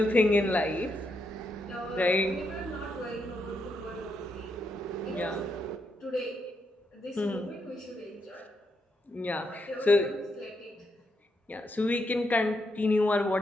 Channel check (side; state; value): both; normal; correlation 0.80